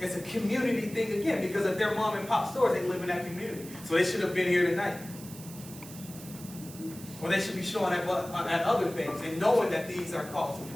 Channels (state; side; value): noise; right; hiss, 16 dB below the sound